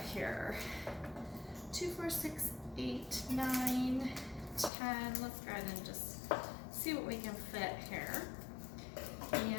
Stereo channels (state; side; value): drops out; right; at 4.7 s